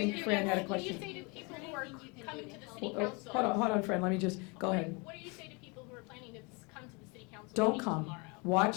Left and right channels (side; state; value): right; quieter; 29.8 dB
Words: think to Fran had a people, what do you question. say to people who are coming to the city Hold council? hold on, Fran, let me just, go ahead. What do you say to people who are planning to come to the city council Don't meeting come. tomorrow?